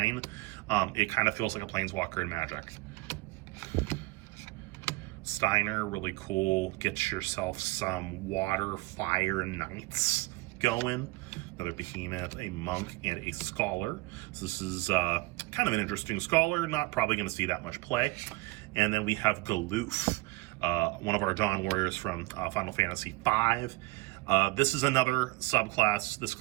It kind of feels like a Planeswalker in Magic. Steiner, really cool. Get yourself some water, fire, knights going. Another Behemoth, a Monk, and a Scholar. So this is kind of an interesting Scholar. Not probably going to see that much play. And then we have Galoof, one of our Dawn Warriors from Final Fantasy V. This is another subclass. This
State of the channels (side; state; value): left; quieter; 21.9 dB